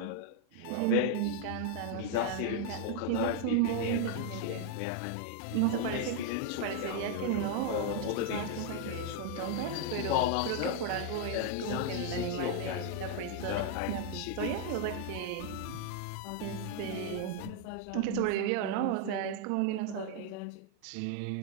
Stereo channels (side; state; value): both; different; correlation 0.00